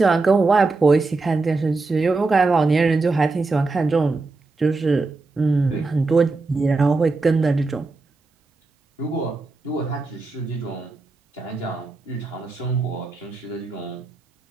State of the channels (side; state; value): left; quieter; 3.7 dB